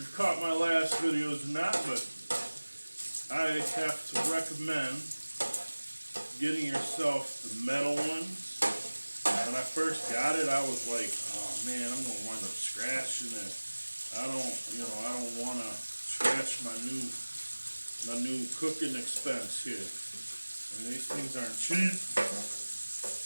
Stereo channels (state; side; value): inverted; both; correlation -1.00